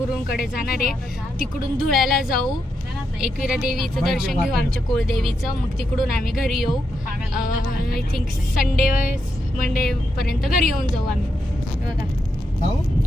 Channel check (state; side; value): normal; both; correlation 0.83